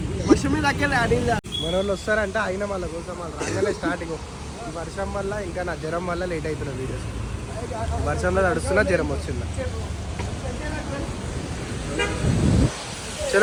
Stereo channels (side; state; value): both; identical; correlation 1.00